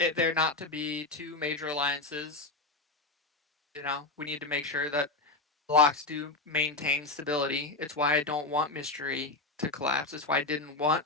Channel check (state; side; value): quieter; right; 3.3 dB